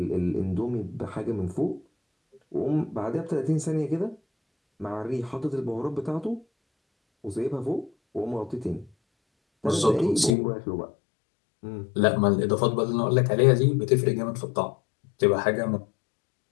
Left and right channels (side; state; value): right; drops out; at 10.4 s